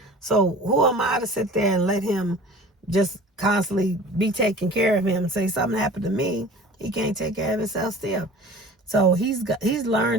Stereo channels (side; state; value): both; normal; correlation 0.42